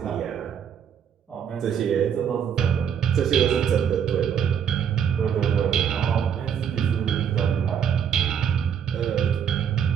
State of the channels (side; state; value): left; quieter; 8.2 dB